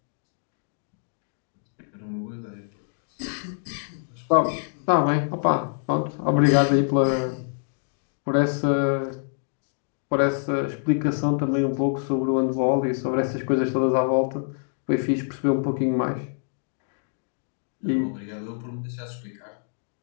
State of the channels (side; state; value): right; silent; digital silence